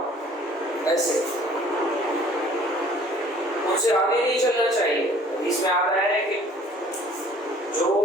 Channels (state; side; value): normal; both; correlation 0.53